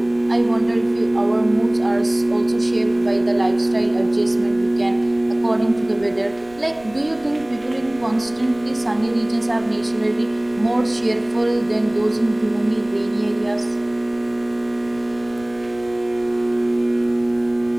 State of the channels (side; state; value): right; noise; rumble, 24 dB below the sound